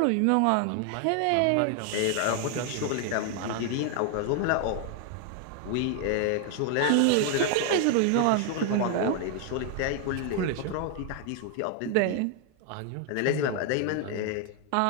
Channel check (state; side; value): different; both; correlation 0.00